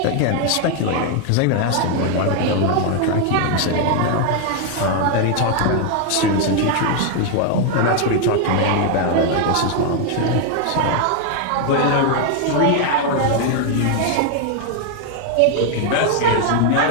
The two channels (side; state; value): both; different; correlation 0.00